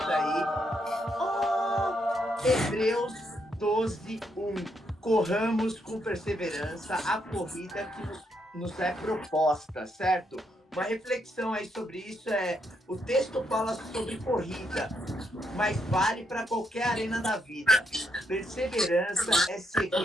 aí. Hebreus 12:1. Corramos com perseverança a corrida que nos é proposta, certo? Uma reflexão aí sobre isso o texto fala sobre corrida, mas vale para qualquer arena da vida. Perseverança é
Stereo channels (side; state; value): both; normal; correlation 0.77